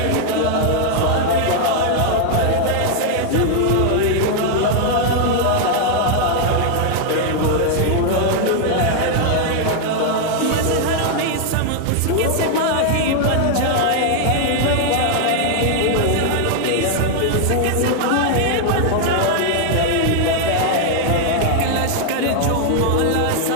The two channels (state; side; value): different; both; correlation 0.00